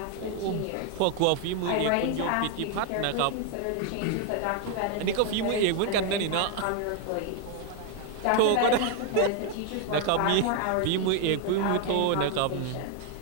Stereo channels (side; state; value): both; different; correlation 0.00